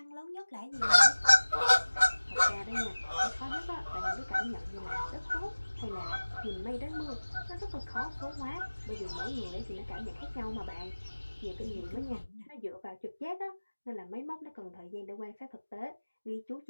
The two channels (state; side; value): inverted; both; correlation -1.00